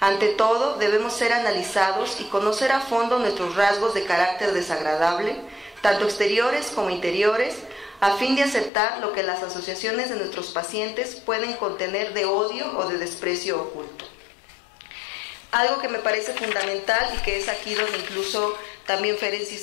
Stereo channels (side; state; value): right; drops out; at 8.7 s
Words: Ante todo, debemos ser analizados y conocer a fondo nuestros rasgos de carácter desagradable, tanto exteriores como interiores, a fin de aceptar lo que las asociaciones de nuestros pacientes pueden contener de odio o de desprecio oculto. Algo que me parece fundamental y que es aquí donde incluso también Ferenczi